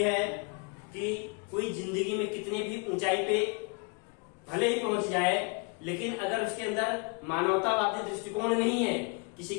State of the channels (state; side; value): quieter; right; 31.7 dB